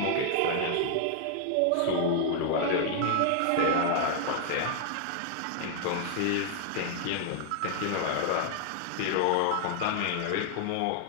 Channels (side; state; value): both; different; correlation 0.00